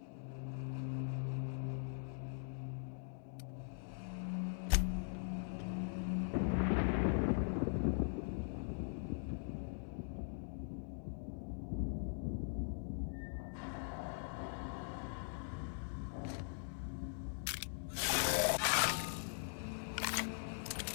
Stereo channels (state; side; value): silent; right; digital silence